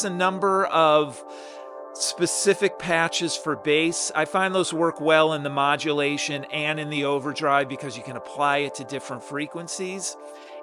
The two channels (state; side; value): identical; both; correlation 1.00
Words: a number of specific patches for bass. I find those work well in the modulation and in the overdrive because you can apply it to different frequencies.